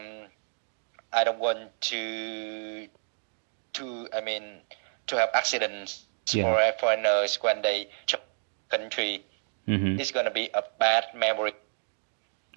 I don't want to have accidents for foreigners when they travel country. It's gonna be a bad memory.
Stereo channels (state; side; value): silent; left; 58 dB below the other